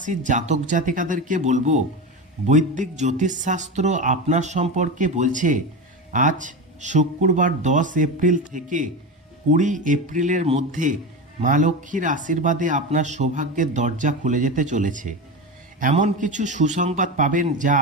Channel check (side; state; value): both; normal; correlation 0.21